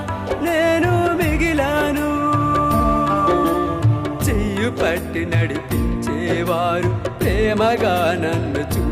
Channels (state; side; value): identical; both; correlation 1.00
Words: నేను మిగిలాను. చెయ్యి పట్టి నడిపించేవారు, ప్రేమగా నన్ను